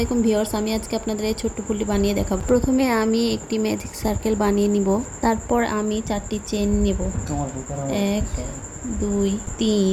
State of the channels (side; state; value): both; identical; correlation 1.00